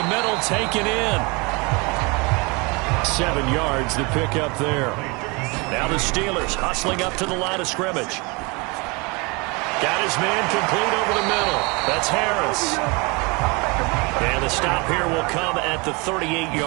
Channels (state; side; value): quieter; left; 28.3 dB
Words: middle, taken in. 7 yards, the pickup there. Now the Steelers hustling up to the line of scrimmage. Got his man complete over the middle. That's Harris. And the stop here will come at the